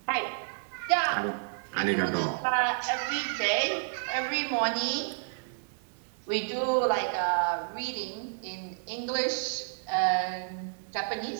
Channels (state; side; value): silent; left; digital silence